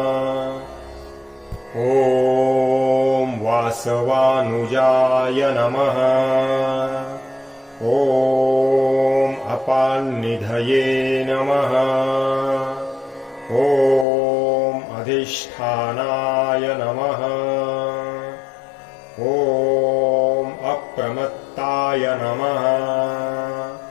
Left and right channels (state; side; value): drops out; right; at 14.1 s